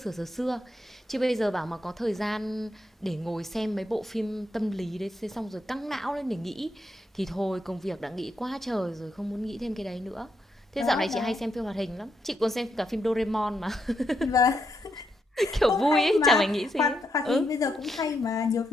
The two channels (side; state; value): both; normal; correlation 0.80